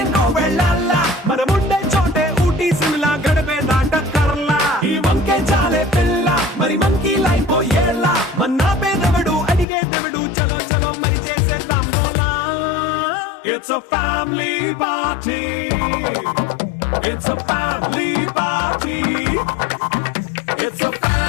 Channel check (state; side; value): drops out; right; at 9.7 s